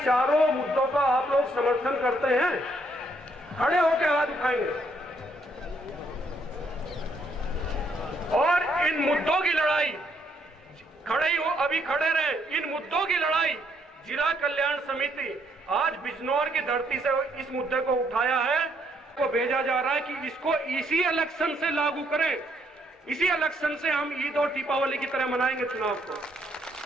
मुद्दों का आप लोग समर्थन करते हैं? खड़े होकर हाथ उठाएंगे। और इन मुद्दों की लड़ाई, खड़े ही हो, अभी खड़े रहे। इन मुद्दों की लड़ाई जिला कल्याण समिति आज बिजनौर की धरती से इस मुद्दे को उठाया है, को भेजा जा रहा है कि इसको इसी इलेक्शन से लागू करें, इसी इलेक्शन से हम ईद और दीपावली की तरह मनाएंगे चुनाव को।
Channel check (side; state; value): both; normal; correlation 0.71